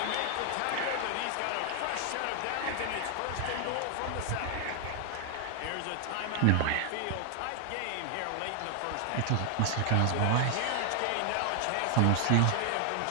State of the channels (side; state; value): both; different; correlation 0.00